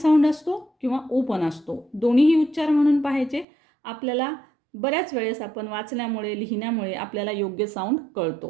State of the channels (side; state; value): left; drops out; at 3.5 s